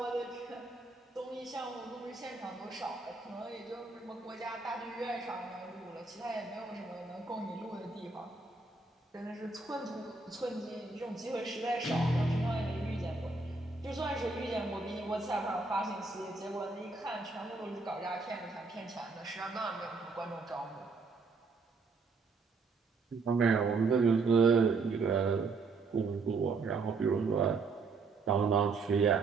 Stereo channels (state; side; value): quieter; left; 4.1 dB